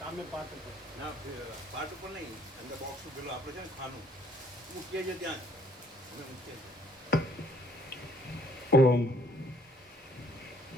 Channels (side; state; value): both; normal; correlation 0.62